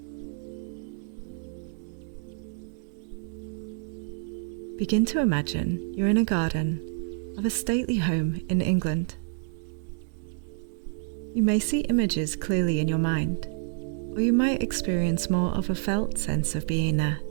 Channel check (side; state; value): left; silent; digital silence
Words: Begin to imagine you're in a garden of a stately home in England. You may see images clearly in your mind, or you might experience more of a felt sense of being there.